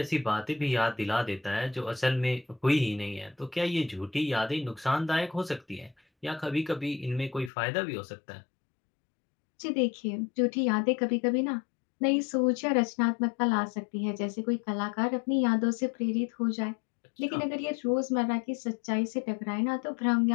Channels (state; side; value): drops out; right; at 7.5 s